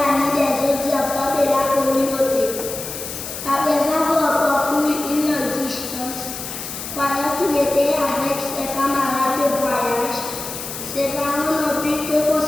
des autres enfants de la communauté. Après avoir parcouru une longue distance, croyant qu'il était avec ses camarades de voyage, ses parents n'ont pu que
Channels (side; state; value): left; noise; hiss, 8 dB below the sound